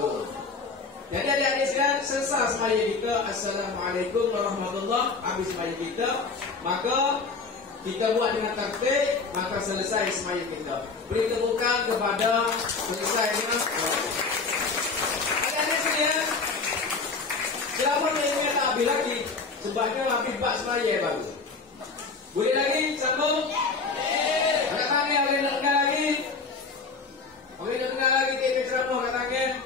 Jadi adik-adik sekalian, selesai semaya kita Assalamualaikum warahmatullahi. Habis semaya kita, maka kita buat dengan tertib, maka selesai semaya kita. Beri tepukan kepada selesai dengan adik-adik sekalian. Selama ini tak habis lagi, sebabnya habis bab semaya baru. Boleh lagi sambung? Kat tangan boleh nak dengar lagi? Boleh nak dengar lagi TV ceramah kat tangan?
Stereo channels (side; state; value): right; quieter; 4.4 dB